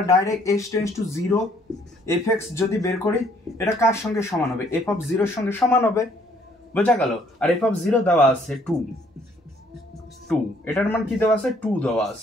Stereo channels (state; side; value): normal; both; correlation 0.64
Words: direct x tends to zero, F x যদি বের করি এটা কার সঙ্গে সমান হবে, এফ অফ জিরোর সঙ্গে সমান হবে। বোঝা গেল। আর এফ অফ 0 দেওয়া আছে 2, এটার মান কি দেওয়া আছে 2 দেওয়া